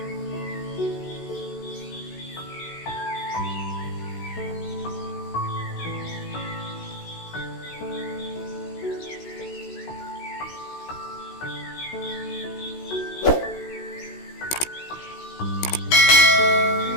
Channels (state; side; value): late; right; 16 ms